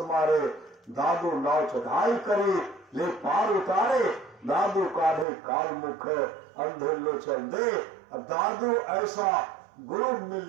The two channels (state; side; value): drops out; left; at 5.2 s